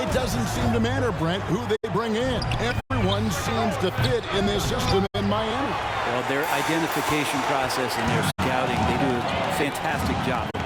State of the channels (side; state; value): both; identical; correlation 1.00